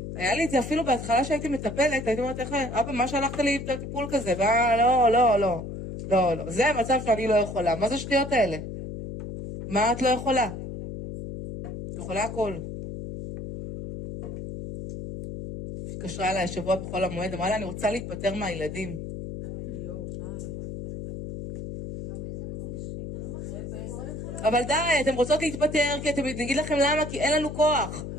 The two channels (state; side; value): noise; left; hum, 8 dB below the sound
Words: היה לי את זה אפילו בהתחלה שהייתי מטפלת, הייתי אומרת, אבא, מה שלחת לי טיפול כזה? לא. זה המצב שאני לא יכולה. מה זה שטויות האלה? מה את לא יכולה? את יכולה הכל. התקשרה אליי השבוע בכל המועד, אמרה לה, אני רוצה להתפטר מהילדים. אבל די, אתם רוצות להתפטר, כי אתם נגיד לכם למה, כי אין לנו כוח.